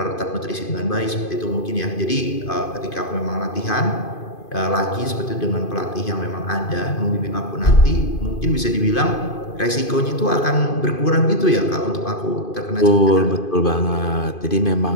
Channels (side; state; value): right; late; 2.5 ms